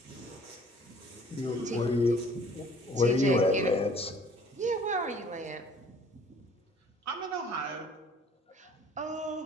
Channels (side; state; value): both; normal; correlation 0.55